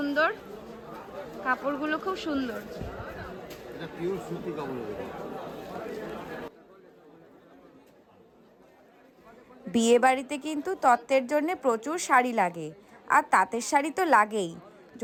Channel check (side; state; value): both; identical; correlation 1.00